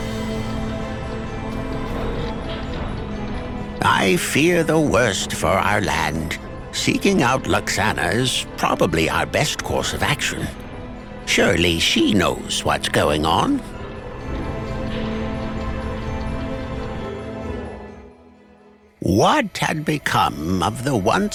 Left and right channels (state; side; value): identical; both; correlation 1.00